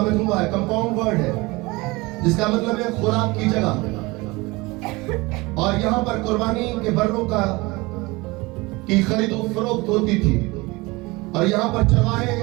मजमूआ है, कंपाउंड वर्ड है, जिसका मतलब है खुराक की जगह। और यहाँ पर कुर्बानी के बर्रों का की खरीदो फरोख्त होती थी। और यहाँ पर चरवाहे,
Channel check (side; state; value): left; quieter; 23.3 dB